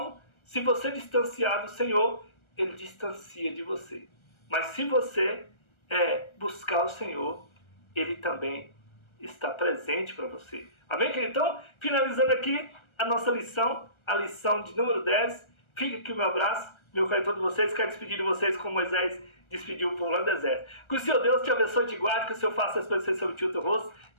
se você distanciar do Senhor, Ele distancia de você. Mas se você buscar o Senhor, Ele também está presente para você. Amém, querido? Então, finalizando aqui a nossa lição, a lição de número 10. Fica aqui o meu abraço, meu carinho a todos vocês. Quero despedir de vocês como Moisés despediu o povo lá no deserto. Que o Senhor Deus te abençoe e te guarde, que o Senhor faça resplandecer sobre ti o teu rosto,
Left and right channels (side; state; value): right; late; 1.3 ms